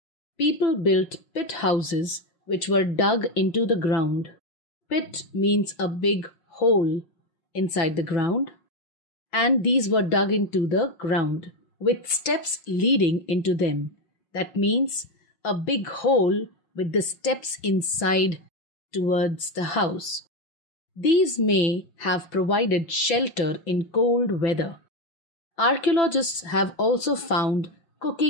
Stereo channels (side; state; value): right; late; 6.0 ms